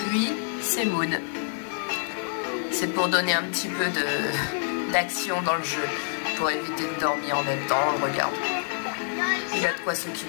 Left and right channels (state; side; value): silent; right; digital silence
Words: c'est Maud. C'est pour donner un petit peu d'action dans le jeu, pour éviter de dormir en même temps, on le regarde. Il a de quoi